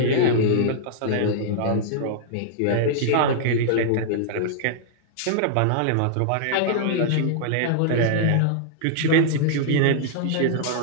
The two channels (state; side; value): different; both; correlation -0.02